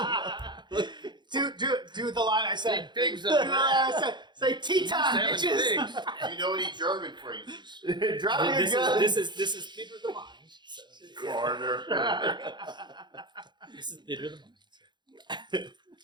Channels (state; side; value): late; left; 0.22 ms